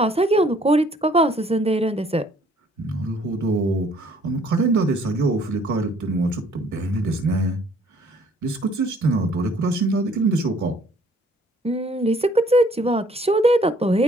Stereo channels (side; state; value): both; normal; correlation 0.60